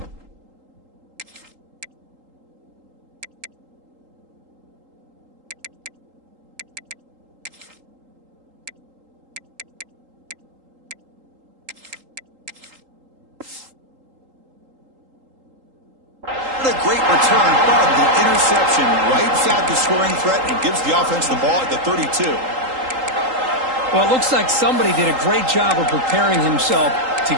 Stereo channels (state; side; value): late; left; 3.8 ms